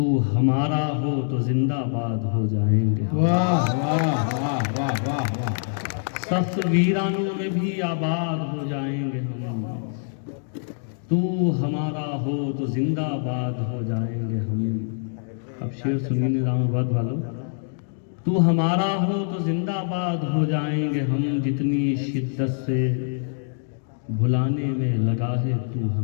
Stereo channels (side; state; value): right; silent; digital silence